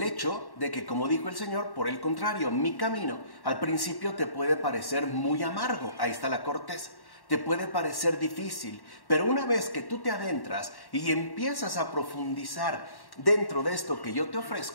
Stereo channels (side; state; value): right; late; 1.1 ms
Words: hecho de que, como dijo el Señor, por el contrario, mi camino al principio te puede parecer muy amargo, ahí está la corteza, te puede parecer difícil, pero una vez que tú te adentras y empiezas a profundizar dentro de esto que yo te